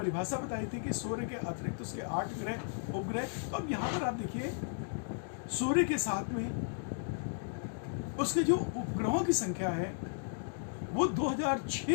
बताई थी कि सूर्य के अतिरिक्त उसके 8 ग्रह, उपग्रह। तो अब यहां पर आप देखिए, सूर्य के साथ में उसके जो उपग्रहों की संख्या है वो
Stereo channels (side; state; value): right; silent; digital silence